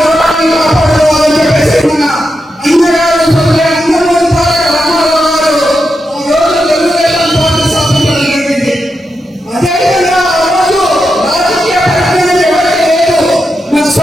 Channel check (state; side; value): normal; both; correlation 0.87